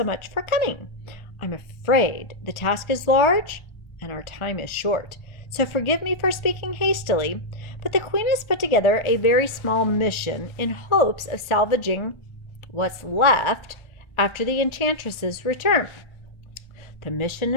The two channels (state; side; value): late; right; 1.3 ms